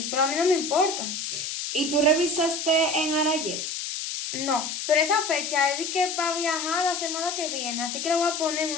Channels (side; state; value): left; noise; hiss, 4 dB below the sound